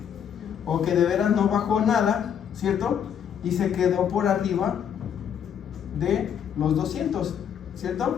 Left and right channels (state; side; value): quieter; right; 8.5 dB